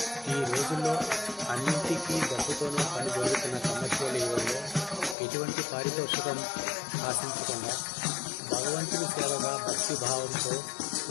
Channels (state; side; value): drops out; right; at 5.2 s